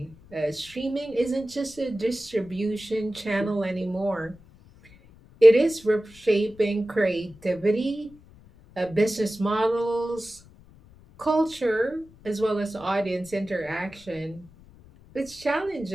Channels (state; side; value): noise; left; rumble, 24 dB below the sound